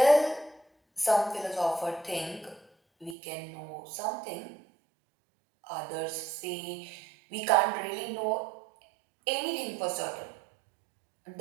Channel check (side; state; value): left; drops out; at 3.2 s